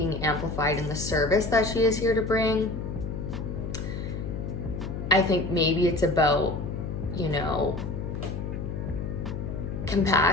amplified in the service that she is here to bring. I think maybe it's about, you know,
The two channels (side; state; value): left; noise; hum, 5 dB below the sound